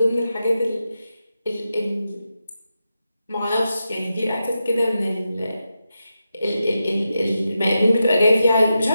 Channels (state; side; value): inverted; both; correlation -0.89